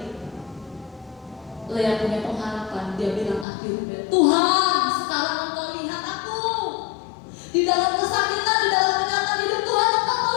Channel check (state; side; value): drops out; right; at 3.5 s